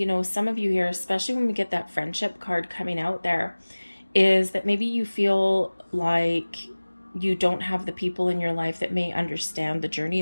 some of you here, especially when we get that friendship card coming out there, is that maybe you feel like you don't have the people in your life that may understand the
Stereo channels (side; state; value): both; inverted; correlation -1.00